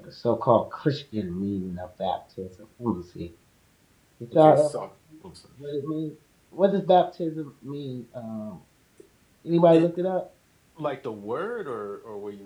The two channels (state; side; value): identical; both; correlation 1.00